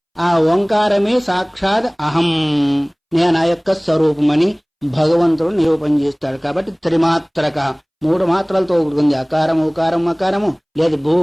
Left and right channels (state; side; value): identical; both; correlation 1.00